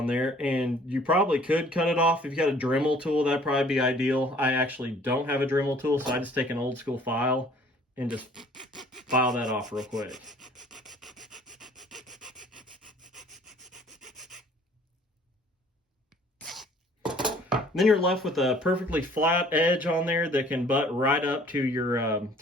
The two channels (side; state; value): both; normal; correlation 0.55